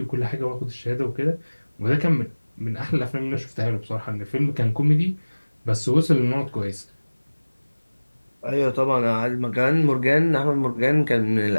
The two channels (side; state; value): both; inverted; correlation -1.00